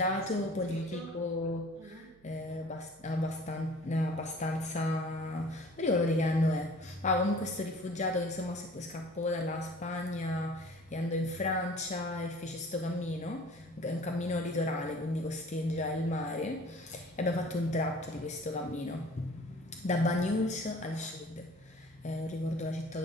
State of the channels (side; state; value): right; noise; hum, 29 dB below the sound